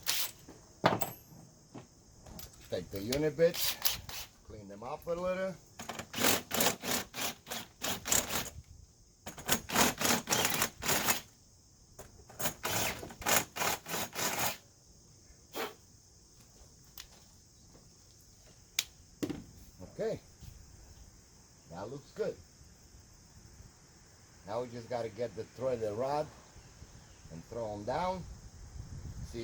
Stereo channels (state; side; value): identical; both; correlation 1.00